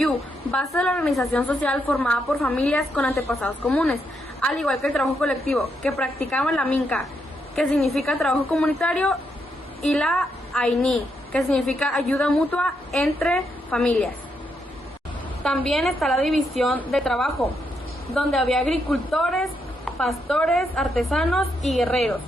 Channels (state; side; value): normal; both; correlation 0.79